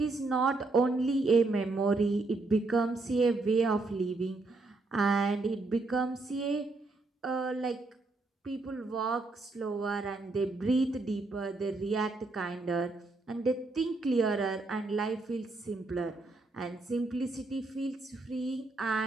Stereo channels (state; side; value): quieter; left; 3.3 dB